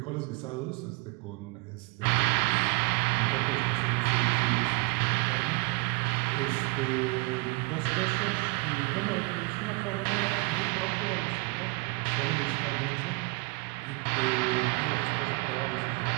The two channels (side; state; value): left; quieter; 29.2 dB